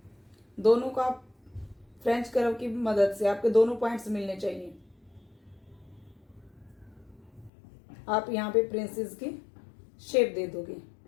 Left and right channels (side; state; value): right; drops out; at 7.5 s